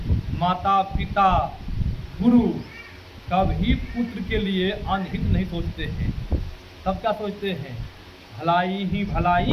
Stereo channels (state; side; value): identical; both; correlation 1.00